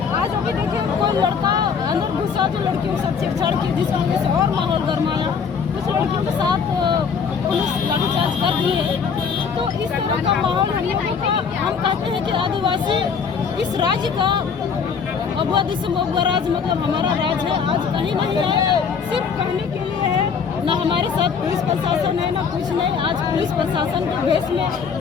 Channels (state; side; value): quieter; right; 6.2 dB